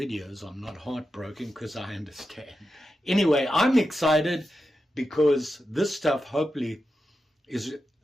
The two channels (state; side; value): normal; both; correlation 0.89